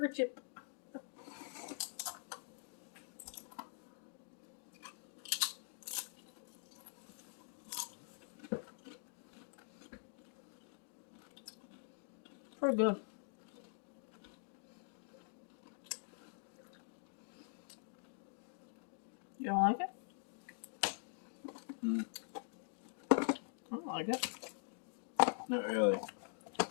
chip. Pretty good. You don't like it? I don't like it. Not really.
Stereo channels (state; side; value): silent; right; digital silence